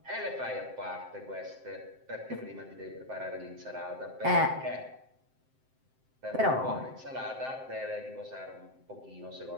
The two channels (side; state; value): left; late; 7.7 ms